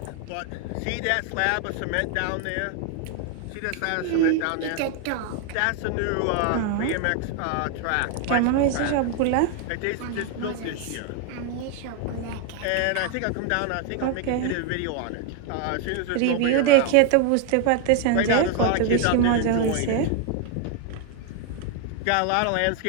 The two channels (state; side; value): different; both; correlation 0.01